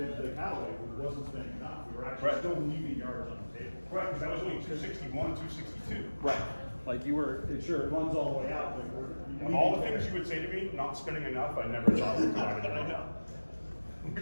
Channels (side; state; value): both; inverted; correlation -1.00